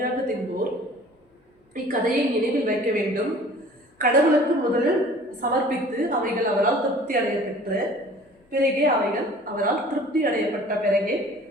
தின்போர் இக்கதையை நினைவில் வைக்க வேண்டும். கடவுளுக்கு முதலில் சமர்ப்பித்து அவைகள் அவரால் திருப்தி அடைய பெற்ற பிறகே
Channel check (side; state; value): both; normal; correlation 0.48